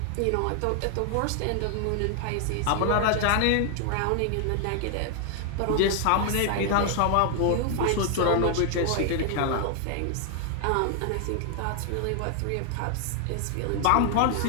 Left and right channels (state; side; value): different; both; correlation 0.00